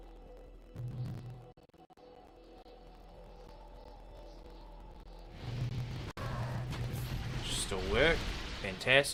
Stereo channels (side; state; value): both; identical; correlation 1.00